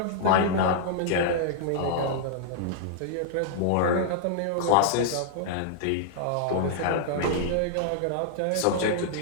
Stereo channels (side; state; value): both; different; correlation -0.01